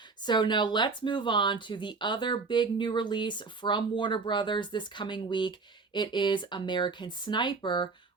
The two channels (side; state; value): left; quieter; 4.4 dB